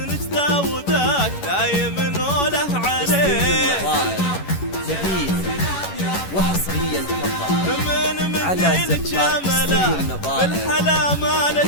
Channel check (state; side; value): late; right; 11 ms